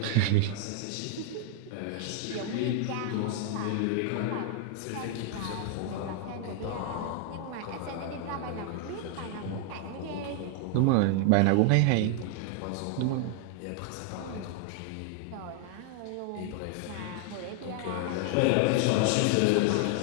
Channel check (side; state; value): both; different; correlation 0.00